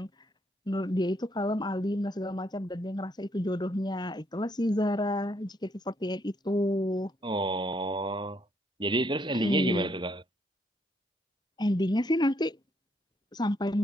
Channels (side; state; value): both; normal; correlation 0.72